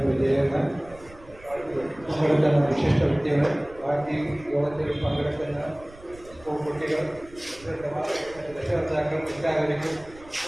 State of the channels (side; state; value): right; noise; rumble, 21 dB below the sound